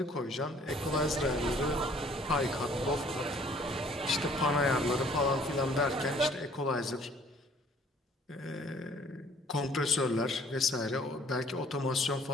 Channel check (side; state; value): both; normal; correlation 0.57